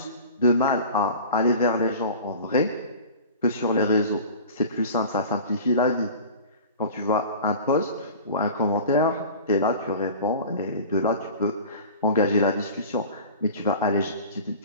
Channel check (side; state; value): both; inverted; correlation -0.39